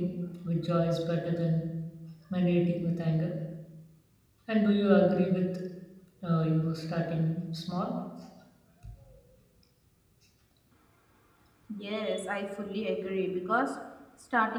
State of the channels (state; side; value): identical; both; correlation 1.00